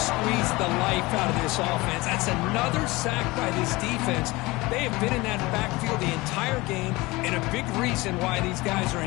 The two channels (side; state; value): right; quieter; 21.9 dB